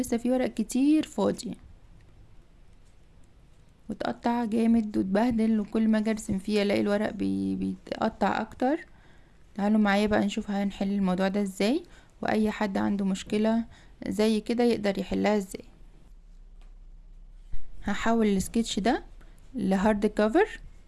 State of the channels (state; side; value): identical; both; correlation 1.00